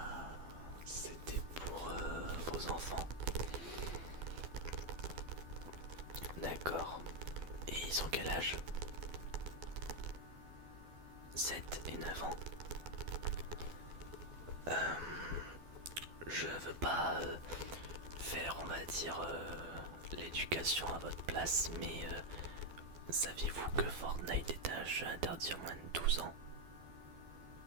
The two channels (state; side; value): late; left; 12 ms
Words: c'était pour vos enfants. D'accord. Et ils ont quel âge? 7 et 9 ans. Je veux pas faire, on va dire, l'éducation à votre place, mais saviez-vous que Fortnite est un jeu interdit à moins de 12 ans?